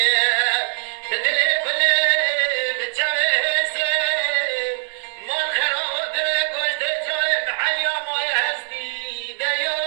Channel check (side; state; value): left; silent; 64 dB below the other